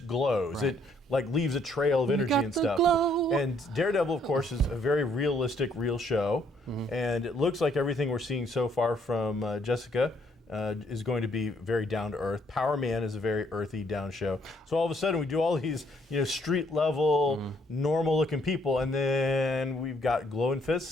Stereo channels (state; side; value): normal; both; correlation 0.68